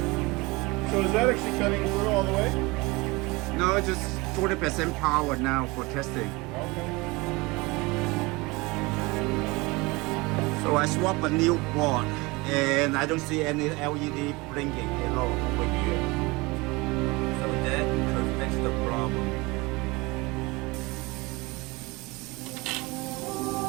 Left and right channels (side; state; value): left; quieter; 24.2 dB